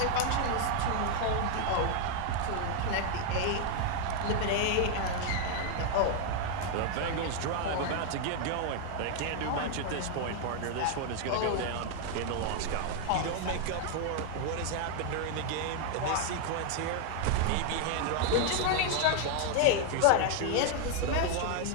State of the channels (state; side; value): different; both; correlation 0.00